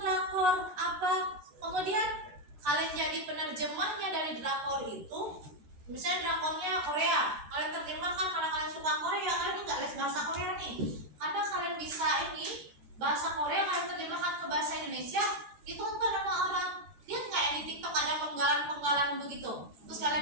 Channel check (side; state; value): left; late; 14 ms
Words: apa? Kemudian kalian jadi penerjemahnya dari drakor itu. Misalnya drakornya Korea, kalian terjemahkan karena kalian suka Korea, kalian nggak les bahasa Korea nih. Karena kalian bisa ini bahasa Korea, kalian terjemahkan ke bahasa ditonton sama orang. Lihat nggak yang di TikTok ada penggalan-penggalan begitu, terus